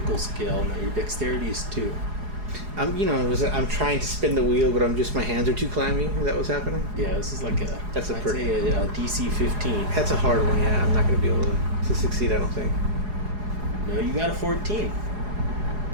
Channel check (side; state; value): left; late; 4.8 ms